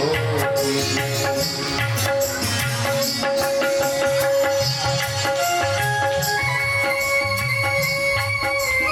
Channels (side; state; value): both; identical; correlation 1.00